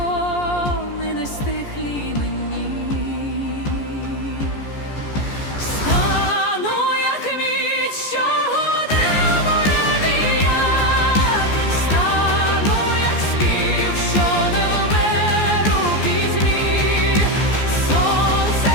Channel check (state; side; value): late; right; 14 ms